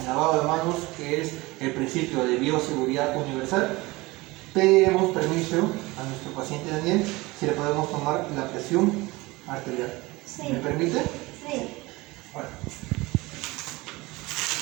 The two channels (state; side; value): quieter; left; 21.9 dB